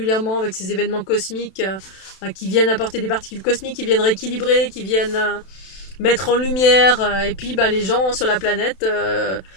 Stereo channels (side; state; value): right; late; 32 ms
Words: avec ces événements cosmiques qui viennent apporter des particules cosmiques, qui viennent rééquilibrer, qui viennent mettre en lumière, et puis bah, les gens sur la planète,